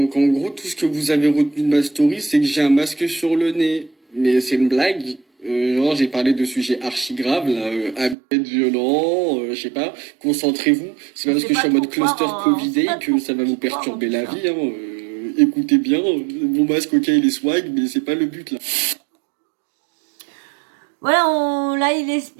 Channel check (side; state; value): left; drops out; at 8.2 s